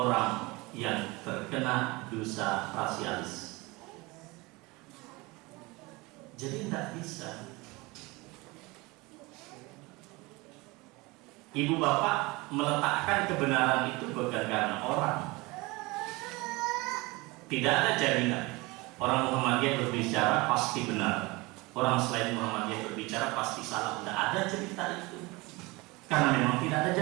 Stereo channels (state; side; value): quieter; left; 23.7 dB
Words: yang terkena dosa rasialis. Jadi tidak bisa. Ibu bapak meletakkan kebenaran itu bukan karena orang. Tidak ada jaminan orang Muhammadiyah berbicara pasti benar, orang selain Muhammadiyah berbicara pasti salah. Tidak ada cerita itu, karena memang tidak ada